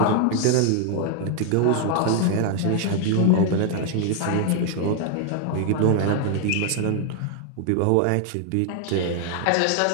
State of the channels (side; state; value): both; different; correlation 0.00